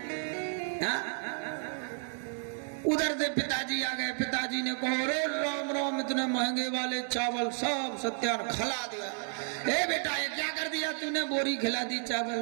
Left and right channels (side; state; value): left; silent; 56 dB below the other